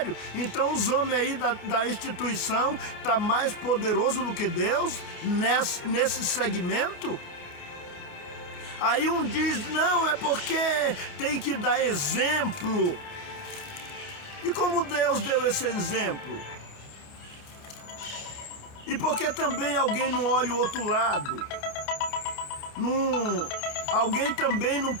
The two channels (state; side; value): late; right; 28 ms